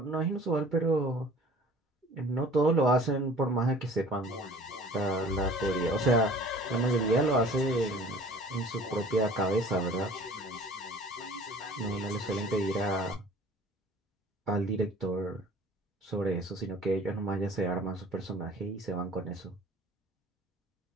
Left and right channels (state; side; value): normal; both; correlation 0.48